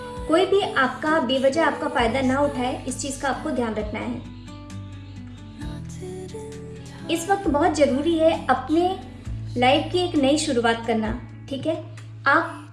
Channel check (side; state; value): both; identical; correlation 1.00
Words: कोई भी आपका बेवजह आपका फ़ायदा ना उठाए, इस चीज़ का आपको ध्यान रखना है। इस वक्त बहुत ज़रूरी है अपने लाइफ की एक नई शुरुआत करना, ठीक है। आप